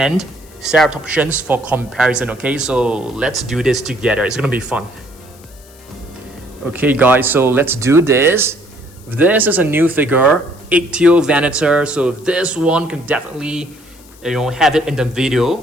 Ceratopsians for comparison, okay? So let's do this together. It's gonna be fun. Okay guys, so let's do this. This is a new figure, Ichthyovenator. So this one can definitely, have it in the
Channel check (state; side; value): noise; left; hiss, 25 dB below the sound